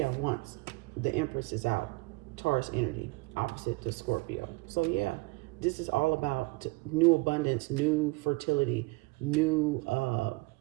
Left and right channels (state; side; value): quieter; left; 23.6 dB